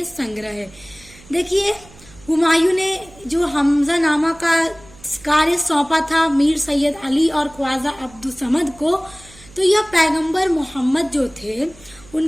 संग्रह है। देखिए हुमायूं ने जो हमजानामा का कार्य सौंपा था मीर सैयद अली और ख्वाजा अब्दुल समद को, तो यह पैगंबर मोहम्मद जो थे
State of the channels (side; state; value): right; noise; hum, 23 dB below the sound